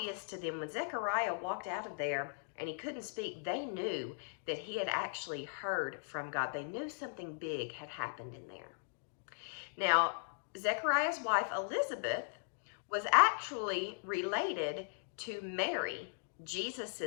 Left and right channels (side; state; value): right; silent; digital silence